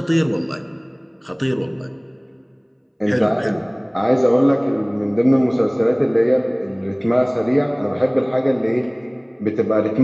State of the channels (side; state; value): both; identical; correlation 1.00